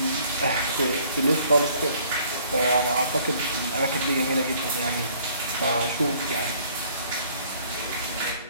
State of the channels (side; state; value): both; inverted; correlation -0.59